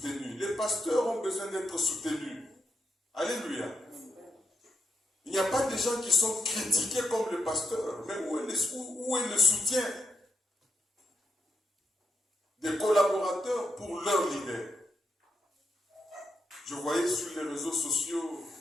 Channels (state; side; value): normal; both; correlation 0.81